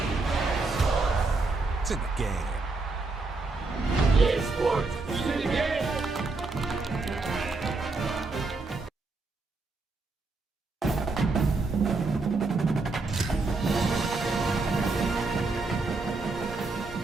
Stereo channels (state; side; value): quieter; left; 3.6 dB